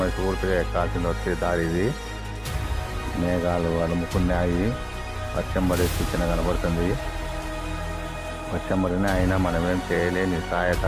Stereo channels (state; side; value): identical; both; correlation 1.00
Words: ఎక్కాల్సింది వచ్చే దారి ఇది. మేఘాలు అలుముకున్నాయి. వర్షం పడే సూచన కనబడుతుంది. వర్షం పడినా అయినా మనమేం చేయలేని సాయత